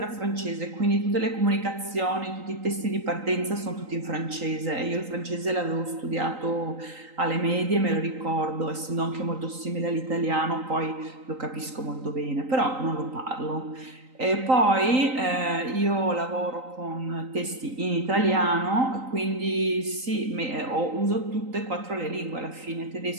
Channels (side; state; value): left; late; 3.9 ms